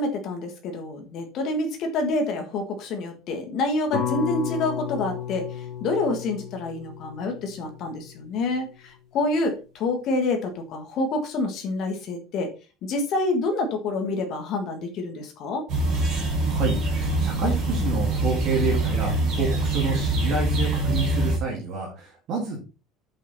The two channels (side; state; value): both; normal; correlation 0.39